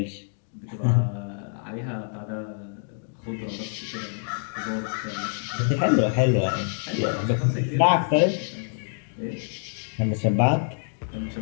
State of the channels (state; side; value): silent; right; digital silence